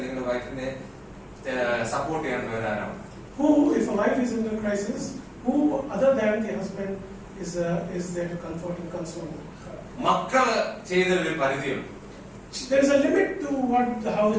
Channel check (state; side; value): identical; both; correlation 1.00